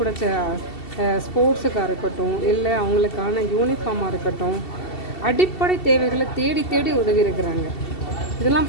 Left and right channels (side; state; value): right; late; 2.7 ms